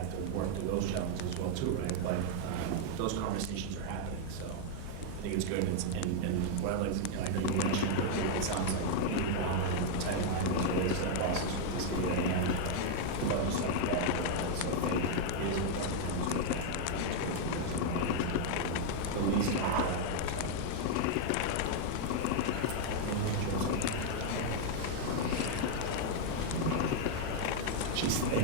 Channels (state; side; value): different; both; correlation 0.00